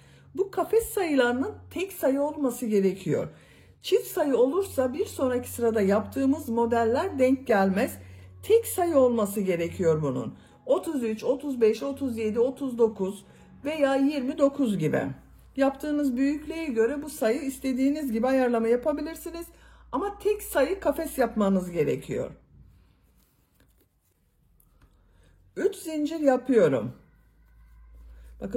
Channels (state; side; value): identical; both; correlation 1.00